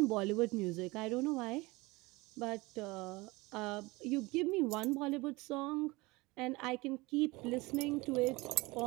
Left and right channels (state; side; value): quieter; left; 22.8 dB